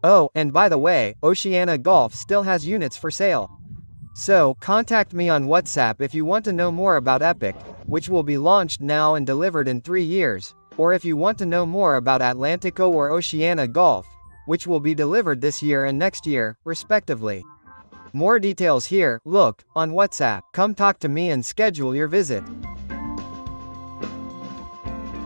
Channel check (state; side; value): inverted; both; correlation -1.00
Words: Oh, and by the way, Oceana Golf still has units for sale. So, contact me on WhatsApp if you want to know more about Epic, which will be launched now and delivered in 3 years, or if you want to know more about Atlantico or Oceana Golf, which will be delivered this year and next year, respectively. More details here. Look, on WhatsApp. Come talk to me and schedule your visit.